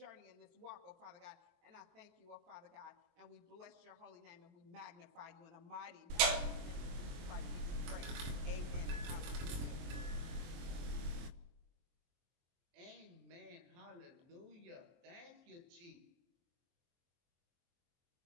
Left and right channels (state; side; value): late; left; 23 ms